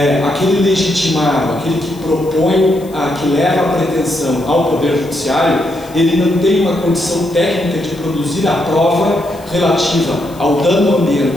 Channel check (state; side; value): noise; left; hiss, 23 dB below the sound